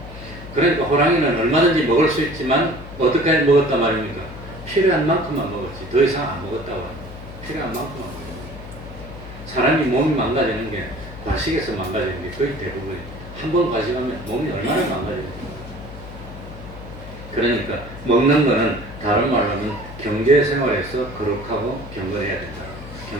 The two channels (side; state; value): left; noise; hum, 14 dB below the sound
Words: 그러니까 호랑이는 얼마든지 먹을 수 있지만 어떻게 먹었단 말입니까? 필요한 만큼만 먹었지 더 이상 안 먹었다고 합니다. 필요한 만큼만 먹었지. 사람이 몸이 망가지는 게 과식에서 망가지는 게 거의 대부분이에요. 한 번 과식하면 몸이 얼마나 망가집니까? 그러니까 먹는 거는 다른 말로 하면 경제생활에서 거룩하고 경건해야 된다.